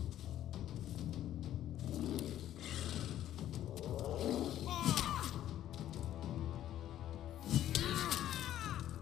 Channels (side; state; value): right; quieter; 12.1 dB